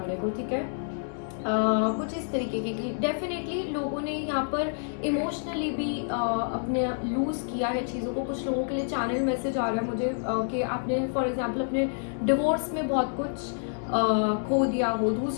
को. ठीक है, कुछ इस तरीके की डेफिनेटली लोगों ने यहाँ पर इमोशनली भी अपने लूज़ किया है चीज़ों को. कुछ लोगों के लिए चैनल मैसेज आ रहा है मुझे कि आपने फॉर एग्जांपल अपने डिवोर्स में बहुत कुछ खो दिया हो,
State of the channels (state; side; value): silent; right; digital silence